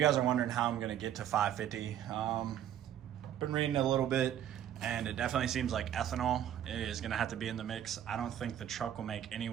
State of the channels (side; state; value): left; quieter; 10.8 dB